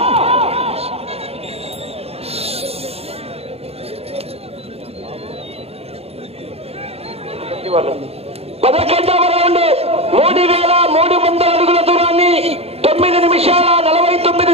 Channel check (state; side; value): late; left; 0.29 ms